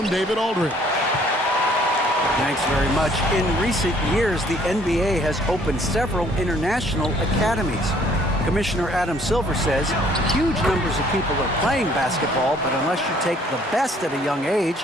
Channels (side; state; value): both; normal; correlation 0.60